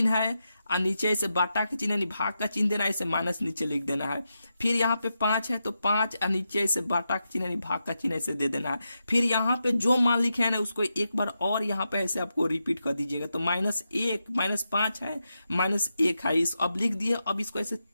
है और नीचे इसे बाटा का चिन्ह यानी भाग का चिन्ह देना है, इसे माइनस नीचे लिख देना है। फिर यहाँ पे 5 है तो 5 और नीचे इसे बाटा का चिन्ह यानी भाग का चिन्ह इसे दे देना है। फिर यहाँ पे जो मान लिखे है ना उसको एक बार और यहाँ पे ऐसे आपको रिपीट कर दीजिएगा। तो -1 -5 है, -1 है, इस अब लिख दिए। अब इसको ऐसे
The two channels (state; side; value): inverted; both; correlation -0.87